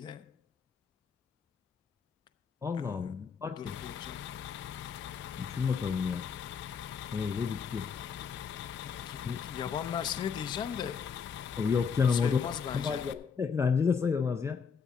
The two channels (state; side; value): quieter; right; 6.2 dB